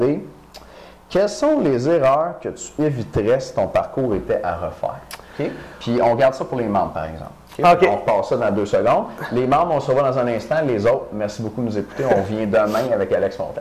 Quelles sont les erreurs que tu éviterais si ton parcours était à refaire? Okay? Puis on garde ça pour les membres, par exemple. Okay? On repasse ça dans 2 secondes. Les membres, on se revoit dans un instant. Les autres, merci beaucoup de nous écouter. On vient demain avec Alex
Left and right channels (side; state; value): both; identical; correlation 1.00